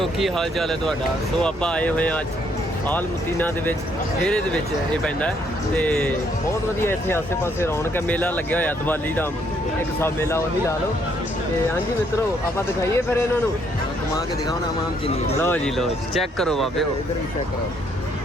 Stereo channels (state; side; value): normal; both; correlation 0.70